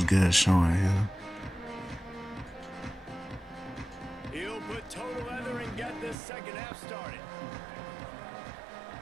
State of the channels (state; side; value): drops out; left; at 6.2 s